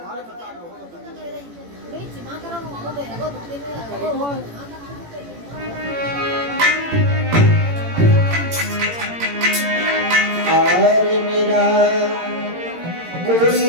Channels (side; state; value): left; late; 18 ms